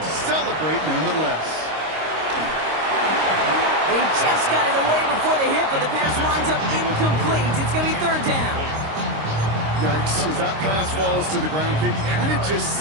to celebrate nonetheless. They just got it away before the hit, but the pass winds up incomplete. It's going to be 3rd down. Yikes. As that pass falls to the ground, Kate, you kind of just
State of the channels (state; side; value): late; left; 26 ms